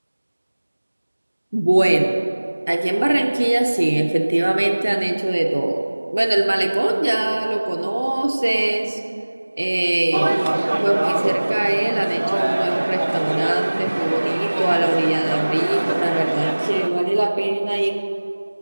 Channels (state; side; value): inverted; both; correlation -1.00